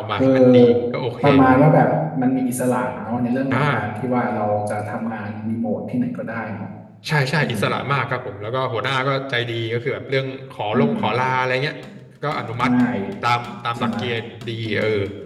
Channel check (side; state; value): both; identical; correlation 1.00